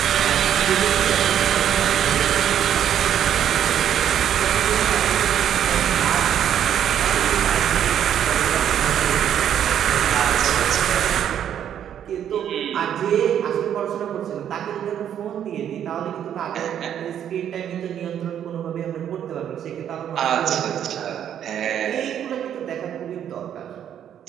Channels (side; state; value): left; quieter; 9.7 dB